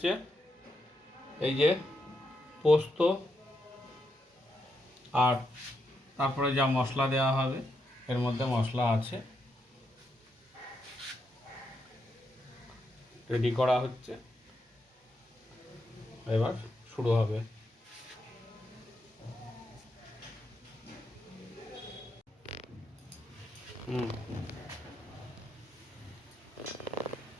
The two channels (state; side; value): normal; both; correlation 0.82